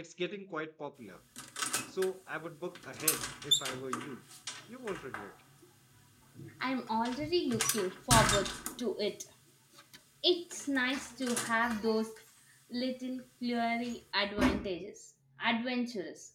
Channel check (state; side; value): identical; both; correlation 1.00